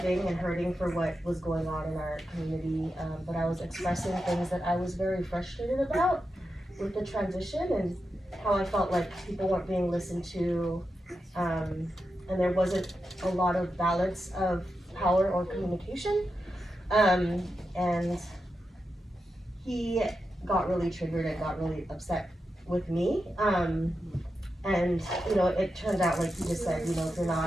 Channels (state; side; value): normal; both; correlation 0.89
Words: and hurting for what was going on in our community, but I was expressing things that I was very frustrated about with the transition and how I felt like people weren't being listened to, and there wasn't a lot of balance of power or communication, and he got really triggered and got really upset with me, and it turned out, like you just said, if you're